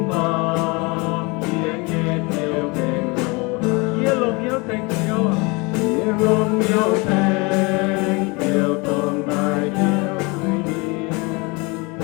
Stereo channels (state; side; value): quieter; right; 27.3 dB